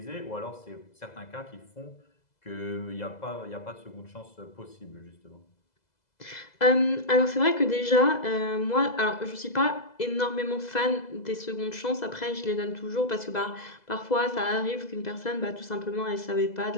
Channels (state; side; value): late; right; 2.0 ms